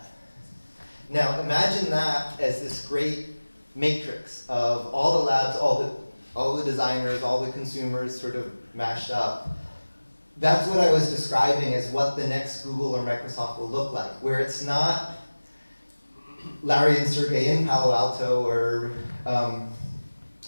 Now imagine that as this great matrix of all the labs, all the designers, all the consumers sort of mashed up. That's what I was describing as what the next Google or Microsoft will look like, where it's not Larry and Sergey in Palo Alto or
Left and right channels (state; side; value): inverted; both; correlation -1.00